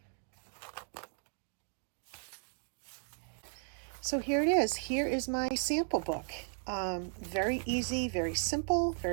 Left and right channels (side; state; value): left; silent; 54 dB below the other